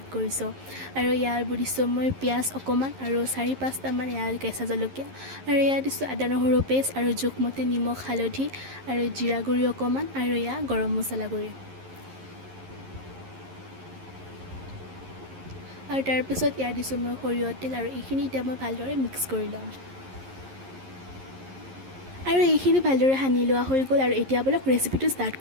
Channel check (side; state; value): left; late; 11 ms